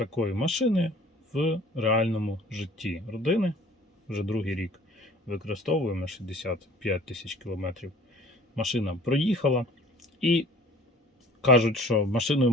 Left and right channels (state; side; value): normal; both; correlation 0.49